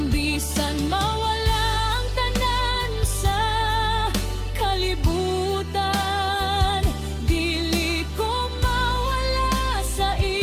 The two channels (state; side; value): identical; both; correlation 1.00